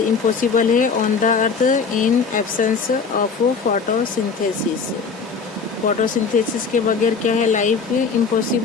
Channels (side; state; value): right; quieter; 5.3 dB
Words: impossible है on the earth in absence of photosynthesis. Photosynthesis के बगैर क्या है, लाइफ